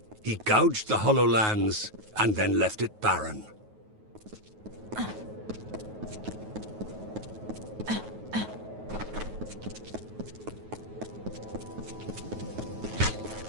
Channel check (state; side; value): late; left; 9.3 ms